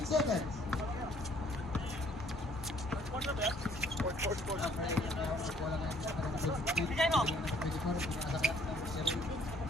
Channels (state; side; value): normal; both; correlation 0.60